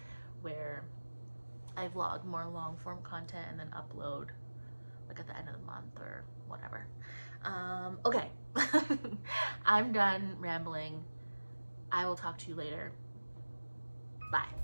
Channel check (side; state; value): both; inverted; correlation -1.00